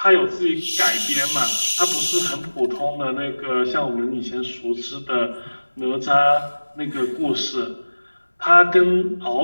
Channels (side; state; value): both; inverted; correlation -1.00